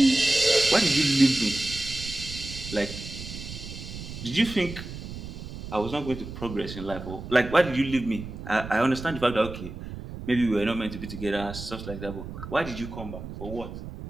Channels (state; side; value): noise; right; rumble, 10 dB below the sound